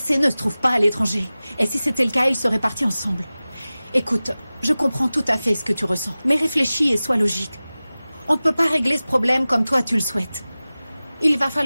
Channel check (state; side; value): inverted; both; correlation -0.97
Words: ne se trouve pas à l'étranger. Et si c'était le cas, ils seraient partis ensemble. Écoute, je comprends tout à fait ce que tu ressens, mais réfléchis et sois logique. On ne peut pas régler ce problème comme toi tu le souhaites. Il va